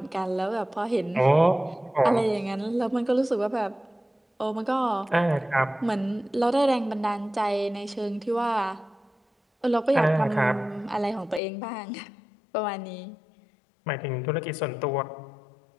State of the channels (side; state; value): right; drops out; at 11.4 s